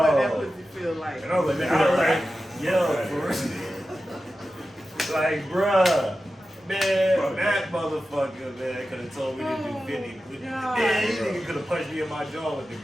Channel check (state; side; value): normal; both; correlation 0.93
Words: that pussy feel like. And I was like, man, I was like, yo, for real. Like, bruh, man, that motherfucker, man, could have told me to do 50. Man, this nigga could have punched me in my jaw with the